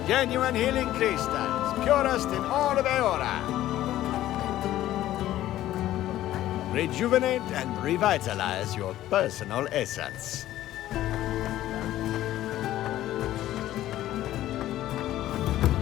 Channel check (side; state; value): right; quieter; 13.9 dB